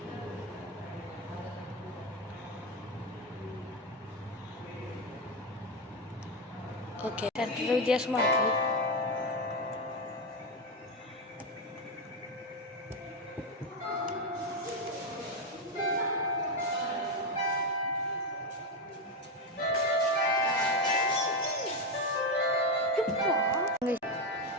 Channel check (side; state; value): both; normal; correlation 0.09